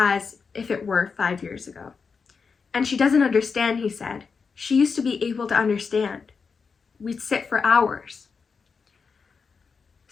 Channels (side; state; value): right; quieter; 5.3 dB